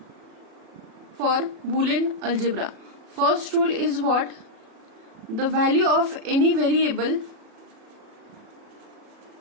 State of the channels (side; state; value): left; late; 36 ms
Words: for Boolean algebra. First rule is what? The value of any variable